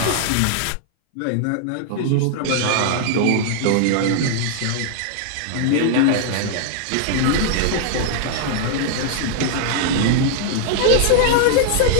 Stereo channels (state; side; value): different; both; correlation -0.01